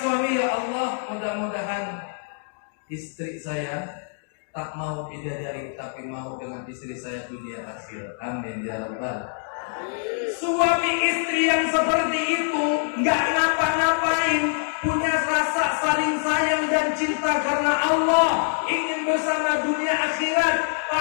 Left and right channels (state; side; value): silent; right; digital silence